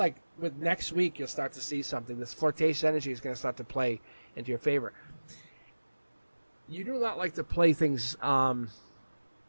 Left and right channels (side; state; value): both; inverted; correlation -1.00